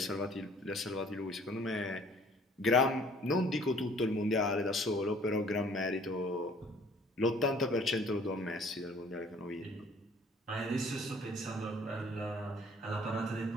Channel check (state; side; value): normal; both; correlation 0.55